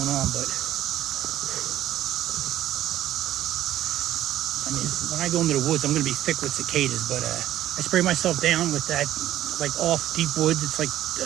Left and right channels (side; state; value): left; quieter; 13.0 dB